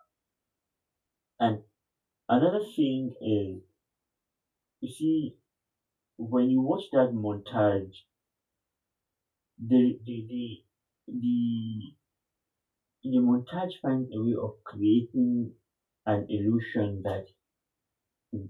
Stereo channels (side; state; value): both; identical; correlation 1.00